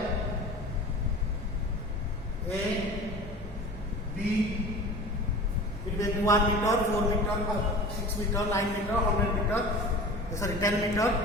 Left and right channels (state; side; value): normal; both; correlation 0.38